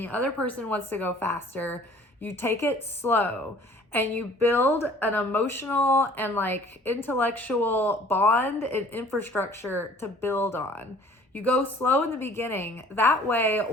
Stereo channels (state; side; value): normal; both; correlation 0.52